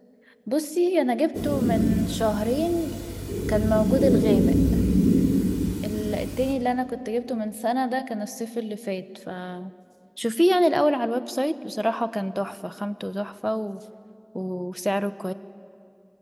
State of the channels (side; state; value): both; identical; correlation 1.00